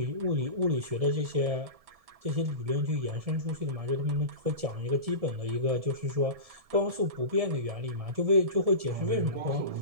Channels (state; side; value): late; left; 1.7 ms